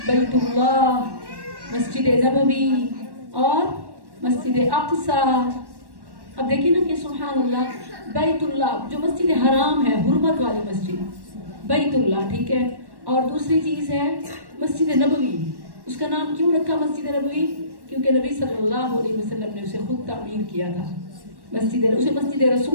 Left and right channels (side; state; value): left; late; 1.1 ms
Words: بیت اللہ، مسجد نبوی اور مسجد اقصیٰ۔ اب دیکھیں نا کہ سبحان اللہ، بیت اللہ جو مسجد حرام ہے، حرمت والی مسجد، بیت اللہ، ٹھیک ہے؟ اور دوسری چیز ہے مسجد نبوی۔ اس کا نام کیوں رکھا مسجد نبوی؟ کیونکہ نبی صلی اللہ علیہ وسلم نے اسے خود تعمیر کیا تھا۔ اسے مسجد